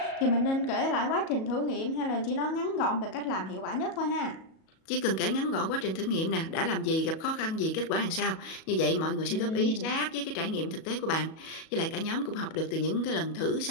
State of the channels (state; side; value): late; right; 37 ms